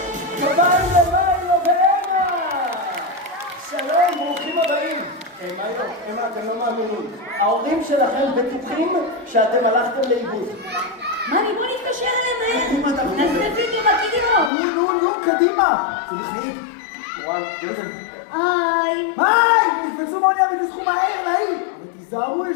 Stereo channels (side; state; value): right; drops out; at 14.5 s